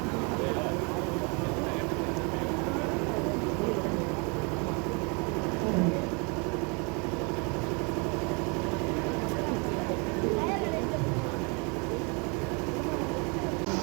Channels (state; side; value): quieter; left; 32.2 dB